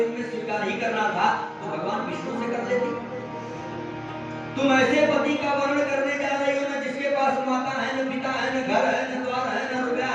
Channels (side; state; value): both; identical; correlation 1.00